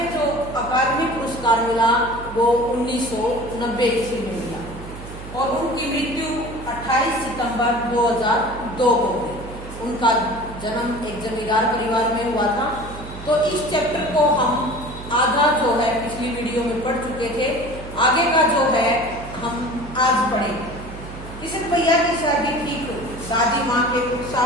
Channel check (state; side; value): noise; right; hum, 13 dB below the sound